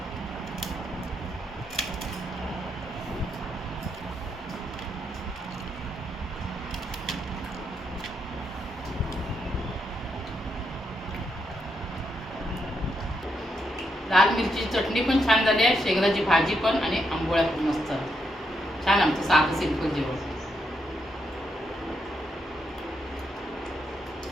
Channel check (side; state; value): both; normal; correlation 0.80